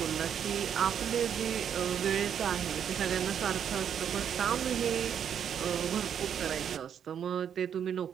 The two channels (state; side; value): quieter; left; 8.5 dB